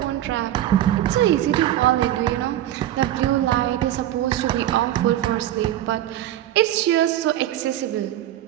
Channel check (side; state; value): left; quieter; 12.9 dB